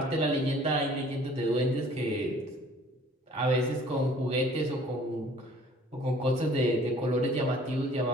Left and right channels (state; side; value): normal; both; correlation 0.53